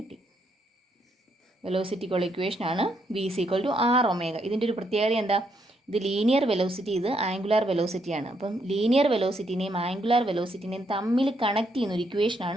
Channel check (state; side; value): normal; both; correlation 0.76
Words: വെലോസിറ്റിക്കുള്ള ഇക്വേഷനാണ് V is equal to R omega. ഇതിൻ്റെ ഒരു പ്രത്യേകത എന്താ? ഇത് ലീനിയർ വെലോസിറ്റി, ഇത് ആംഗുലാർ വെലോസിറ്റിയാണ്. അപ്പം ലീനിയർ വെലോസിറ്റിനെയും ആംഗുലാർ വെലോസിറ്റിനെയും തമ്മിൽ കണക്ട് ചെയ്യുന്ന ഒരു